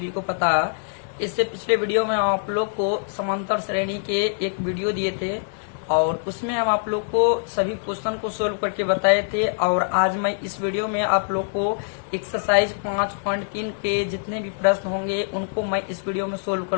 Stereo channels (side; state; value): right; silent; digital silence